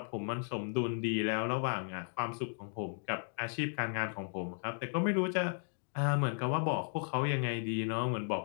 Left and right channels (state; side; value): silent; right; 54 dB below the other